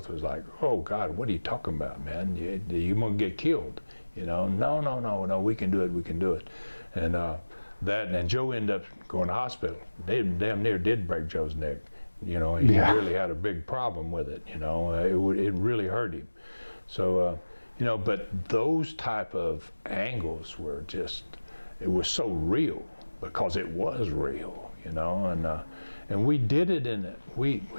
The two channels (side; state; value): both; inverted; correlation -1.00